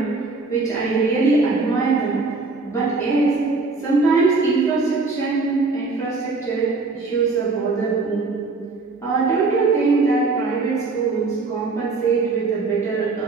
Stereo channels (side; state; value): left; quieter; 3.9 dB